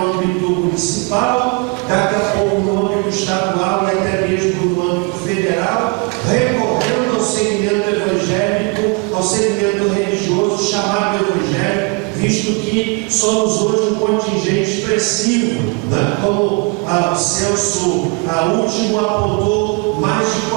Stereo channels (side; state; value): left; quieter; 30.8 dB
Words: âmbito municipal, daqui a pouco no âmbito estadual e até mesmo no âmbito federal, recorrendo ao segmento evangélico, ao segmento religioso chamado evangélico, visto que somos hoje um contingente expressivo, né? Como o censo último apontou, mais de